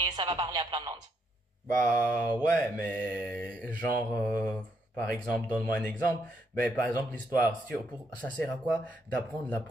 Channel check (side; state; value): both; normal; correlation 0.75